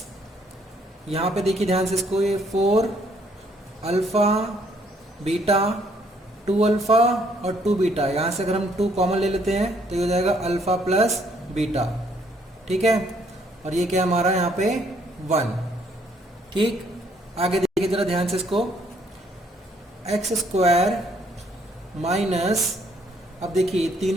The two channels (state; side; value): normal; both; correlation 0.67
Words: यहाँ पे देखिए ध्यान से इसको, ये 4 अल्फा बीटा 2 अल्फा और 2 बीटा, यहाँ से अगर हम 2 कॉमन ले लेते हैं तो ये हो जाएगा अल्फा प्लस बीटा, ठीक है, और ये क्या हमारा यहाँ पे 1, ठीक। आगे देखिए जरा ध्यान से इसको, एक्स स्क्वायर माइनस, अब देखिए